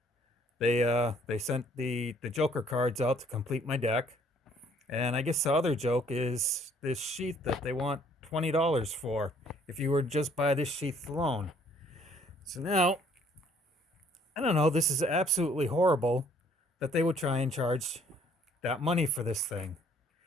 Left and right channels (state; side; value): normal; both; correlation 0.61